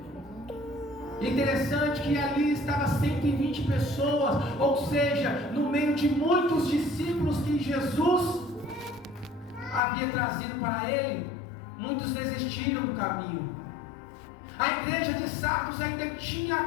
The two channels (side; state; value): right; drops out; at 9.8 s